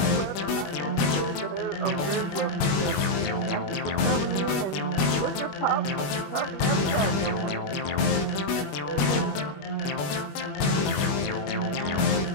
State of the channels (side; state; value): right; late; 21 ms